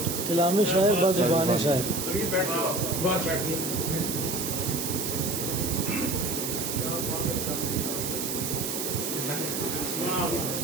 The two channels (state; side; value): noise; right; hiss, 3 dB below the sound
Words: कलामी शायर बजुबानी शायर। बहुत शुक्रिया।